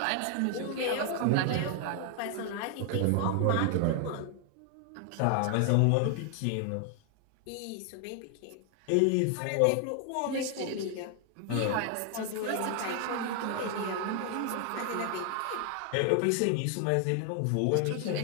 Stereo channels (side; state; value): both; different; correlation 0.00